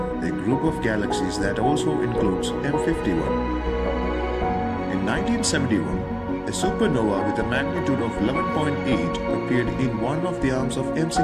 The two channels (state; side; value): identical; both; correlation 1.00